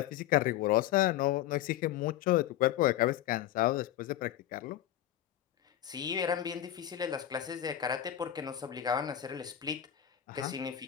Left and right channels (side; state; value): right; quieter; 12.1 dB